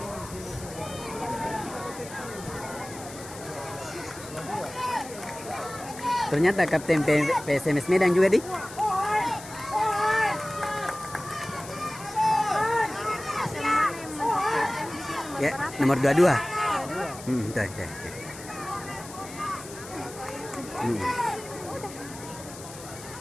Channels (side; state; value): left; noise; hiss, 15 dB below the sound